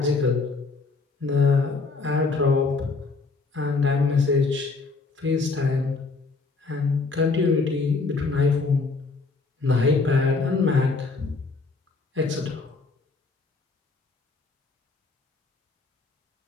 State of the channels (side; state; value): right; quieter; 4.0 dB